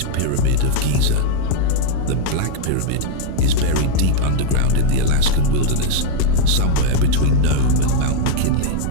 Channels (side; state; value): both; different; correlation 0.00